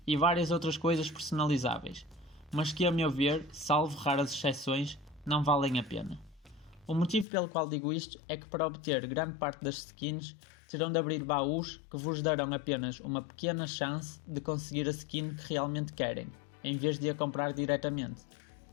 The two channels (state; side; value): drops out; right; at 7.2 s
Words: e várias outras coisas personalizáveis, mas que a meu ver, salvo raras exceções, não valem a pena. O motivo pelo qual digo isto é que para obter grande parte das skins terão de abrir baús que vos darão apenas uma pequena chance de conseguir a skin que realmente querem, em vez de a comprar diretamente.